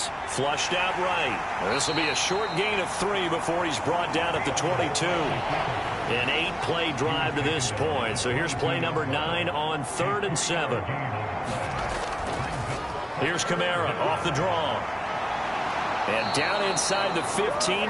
flushed out right. This will be a short gain of 3 before he's brought down at the 22. An 8-play drive to this point. So here's play number 9 on 3rd and 7. Here's Kamara off the draw. And down inside the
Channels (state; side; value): identical; both; correlation 1.00